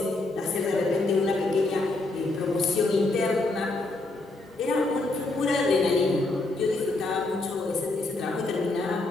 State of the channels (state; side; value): quieter; right; 3.0 dB